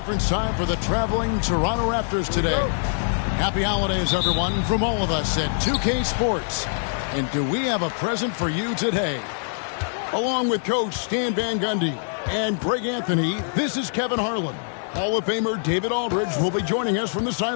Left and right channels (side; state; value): right; silent; digital silence